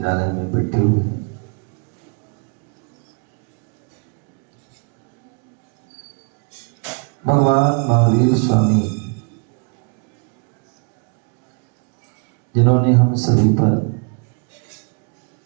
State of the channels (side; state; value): left; quieter; 37.1 dB